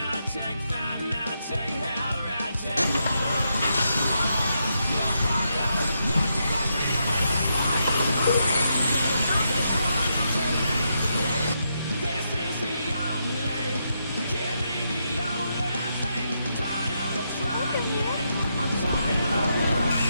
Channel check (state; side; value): inverted; both; correlation -0.82